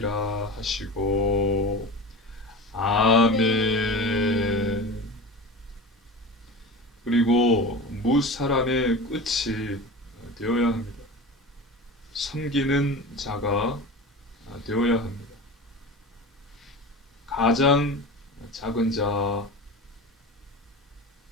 하시고 아멘. 그리고 무사람의 끝이 되어야 합니다. 섬기는 자가 되어야 합니다. 가장 작은 자,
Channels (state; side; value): normal; both; correlation 0.31